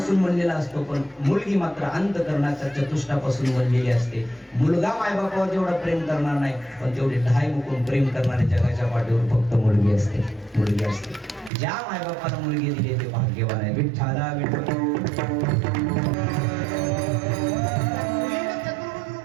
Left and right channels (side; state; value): left; drops out; at 11.5 s